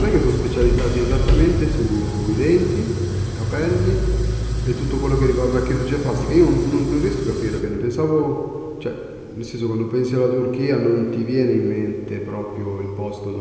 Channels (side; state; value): both; identical; correlation 1.00